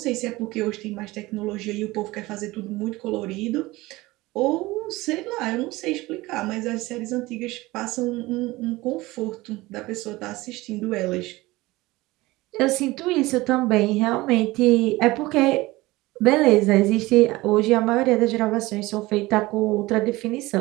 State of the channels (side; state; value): left; quieter; 20.0 dB